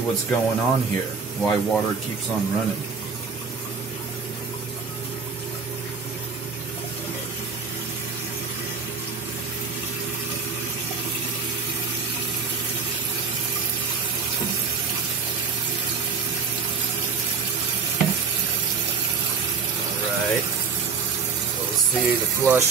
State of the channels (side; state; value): left; quieter; 5.6 dB